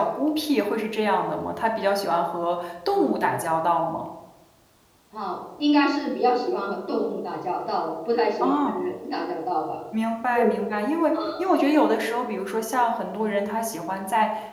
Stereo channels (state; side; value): identical; both; correlation 1.00